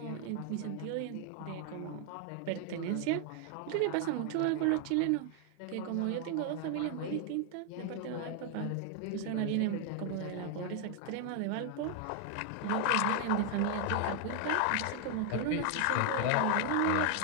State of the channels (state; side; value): different; both; correlation 0.00